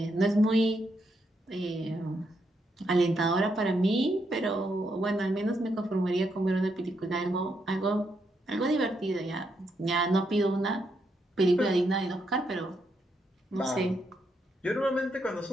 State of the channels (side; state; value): both; normal; correlation 0.79